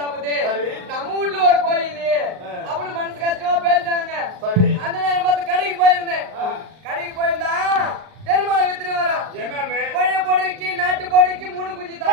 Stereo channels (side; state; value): left; late; 38 ms